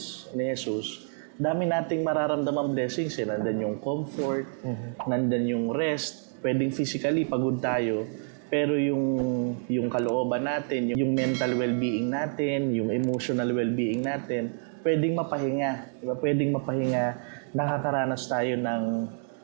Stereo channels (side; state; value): left; silent; 59 dB below the other